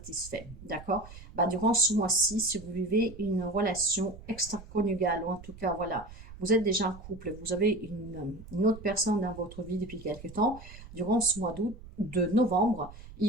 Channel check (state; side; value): noise; right; rumble, 16 dB below the sound